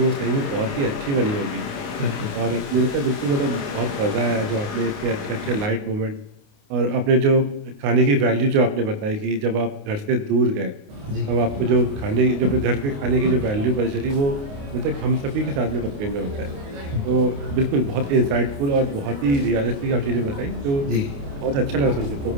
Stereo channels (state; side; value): late; left; 29 ms